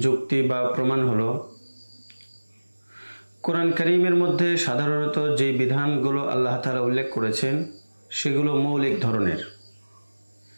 যুক্তি বা প্রমাণ হলো কোরআন কারীমের মধ্যে সাধারণত যে বিধানগুলো আল্লাহ তাআলা উল্লেখ করেছেন সেগুলো মৌলিক ধরনের।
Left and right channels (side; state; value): both; inverted; correlation -1.00